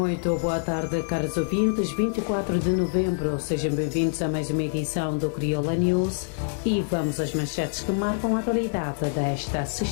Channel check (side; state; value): right; silent; 59 dB below the other